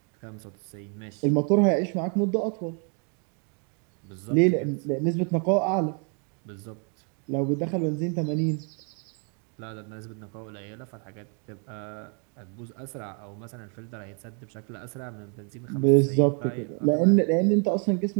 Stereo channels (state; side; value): quieter; left; 39.2 dB